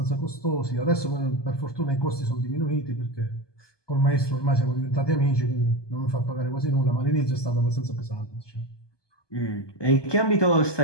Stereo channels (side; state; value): right; late; 1.2 ms